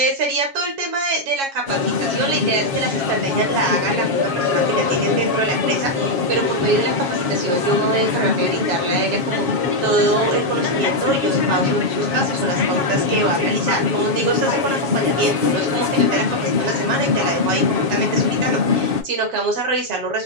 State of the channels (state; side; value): late; left; 7.3 ms